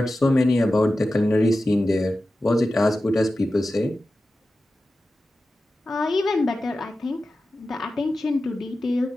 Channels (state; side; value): normal; both; correlation 0.93